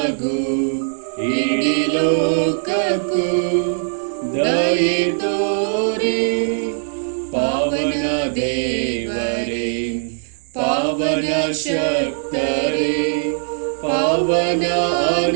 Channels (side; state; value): left; silent; digital silence